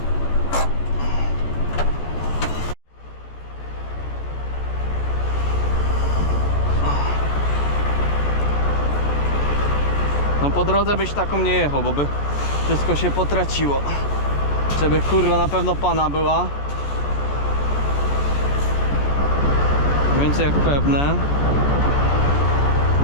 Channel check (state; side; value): late; right; 14 ms